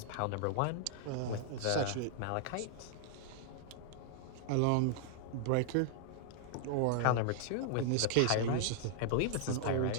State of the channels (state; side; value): different; both; correlation -0.01